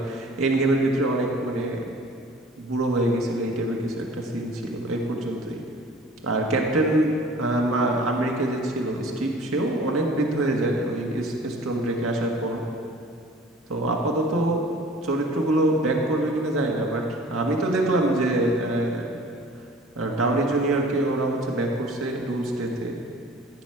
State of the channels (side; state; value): both; normal; correlation 0.47